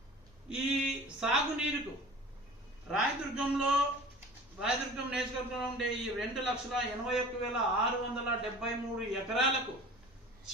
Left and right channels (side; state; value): both; normal; correlation 0.42